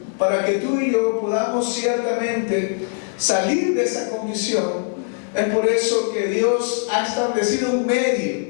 para que tú y yo podamos ciertamente salir de esa condición. Es por eso que Dios ha establecido un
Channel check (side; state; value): right; silent; 65 dB below the other